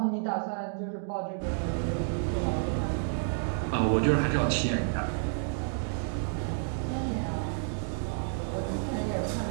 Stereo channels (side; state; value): left; silent; digital silence